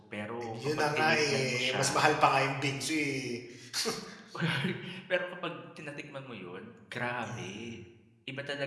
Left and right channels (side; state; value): both; identical; correlation 1.00